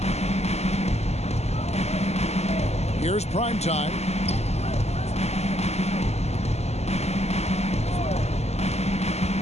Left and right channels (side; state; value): right; late; 0.31 ms